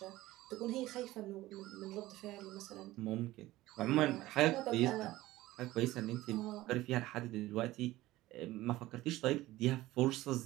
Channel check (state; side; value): quieter; left; 17.0 dB